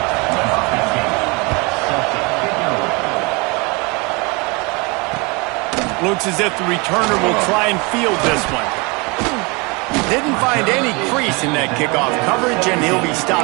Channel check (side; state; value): left; quieter; 28.3 dB